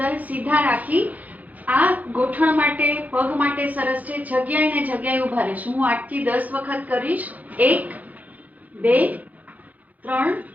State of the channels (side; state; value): left; late; 0.079 ms